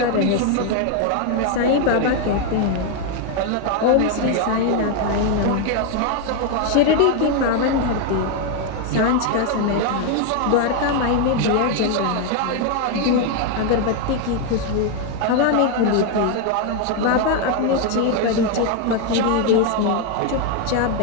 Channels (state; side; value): different; both; correlation 0.01